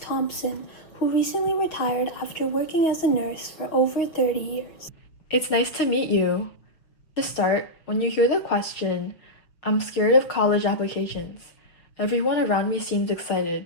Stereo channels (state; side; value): late; right; 6.3 ms